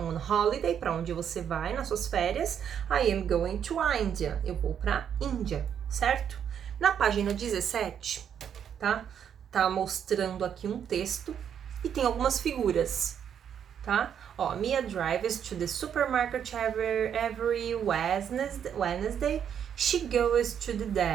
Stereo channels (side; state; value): left; quieter; 8.5 dB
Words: holiday? Pra onde você vai nas suas férias? I am going to India. Eu vou pra Índia, certo? Na página 17, tá? Tá mostrando aqui um texto e tem algumas figuras, tá? Ó, Mia drives to the supermarket every Wednesday. She goes to the